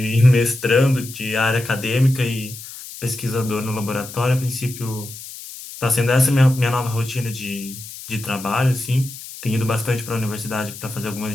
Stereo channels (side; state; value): left; noise; hiss, 13 dB below the sound